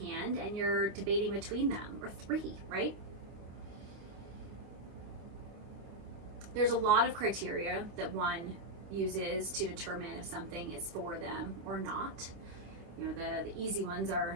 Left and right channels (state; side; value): late; left; 26 ms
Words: hand and you're debating between them, or 3, right? There's a lot of criteria that one uses to determine if something is for them or not. You know, the easy ones